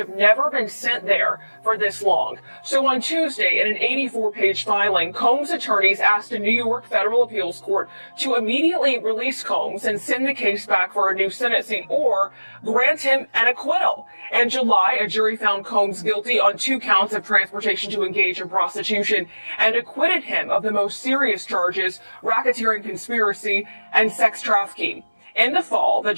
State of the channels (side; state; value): both; inverted; correlation -1.00